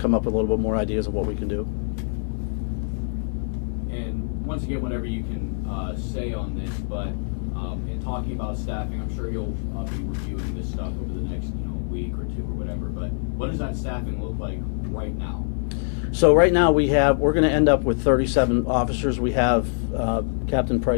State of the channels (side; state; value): right; silent; 61 dB below the other